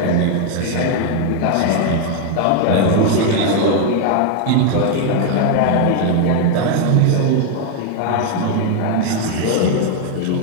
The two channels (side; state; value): both; different; correlation 0.00